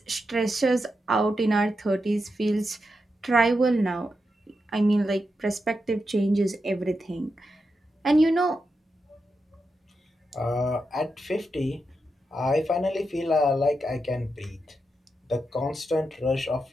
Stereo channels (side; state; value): both; normal; correlation 0.87